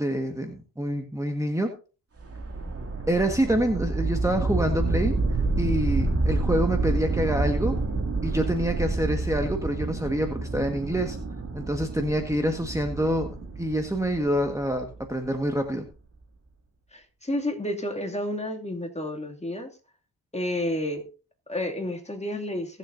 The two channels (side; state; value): both; normal; correlation 0.76